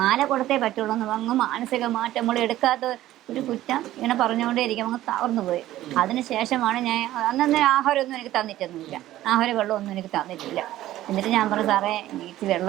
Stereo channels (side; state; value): left; quieter; 14.4 dB